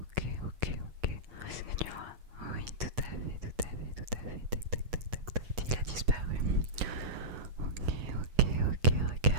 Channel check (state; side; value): late; left; 8.2 ms